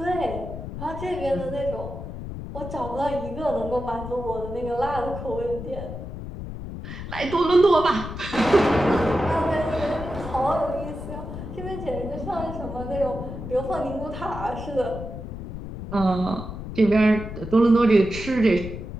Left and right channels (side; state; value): left; noise; rumble, 9 dB below the sound